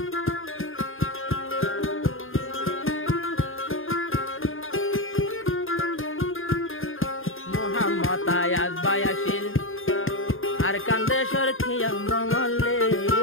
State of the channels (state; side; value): late; right; 0.59 ms